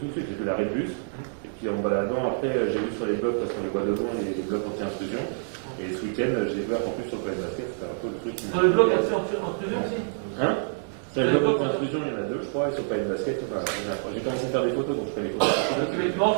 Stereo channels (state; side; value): silent; left; digital silence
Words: tout de suite, j'ai vu l'arrêt de bus. Et puis en baladant, après, j'ai vu sur les blocs, parce qu'on les voit devant, les blocs anti-intrusion. Et ce week-end, j'ai vu qu'en plus sur le plan de basket, c'était un peu le truc. Sur les blocs anti-intrusion aussi? Hein? Sur les blocs anti-intrusion, il y en a 2, je crois, et sur le plan de basket, j'ai commencé à faire des photos, donc je fais les photos. Donc effectivement,